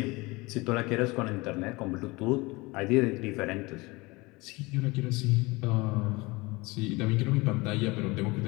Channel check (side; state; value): right; quieter; 23.7 dB